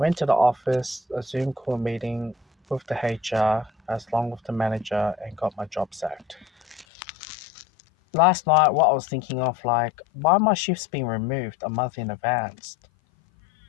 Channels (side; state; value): right; drops out; at 6.9 s